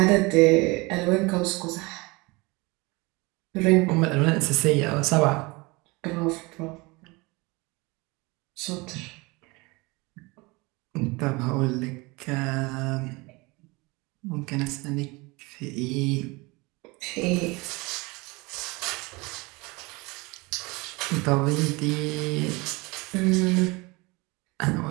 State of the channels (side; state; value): left; quieter; 25.0 dB